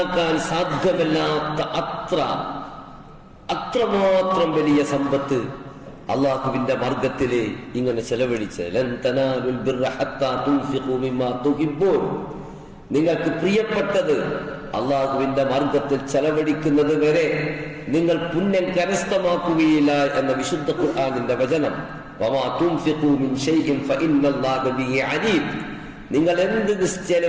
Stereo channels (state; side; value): identical; both; correlation 1.00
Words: സാധ്യമല്ലാത്ത അത്രമാത്രം വലിയ സമ്പത്ത് അള്ളാഹുവിന്റെ മാർഗത്തില് ഇങ്ങനെ ചെലവഴിച്ച് നിങ്ങൾക്ക് പ്രിയപ്പെട്ടത് അള്ളാഹുവിന്റെ മാർഗത്തിൽ ചെലവഴിക്കുന്നത് വരെ നിങ്ങൾ പുണ്യം കരസ്ഥമാക്കുകയില്ല എന്ന വിശുദ്ധ ഖുർആനിന്റെ വചനം. നിങ്ങൾ എന്ത്